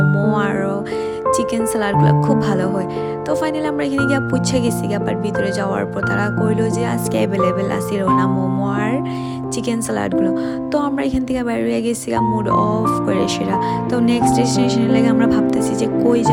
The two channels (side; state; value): both; identical; correlation 1.00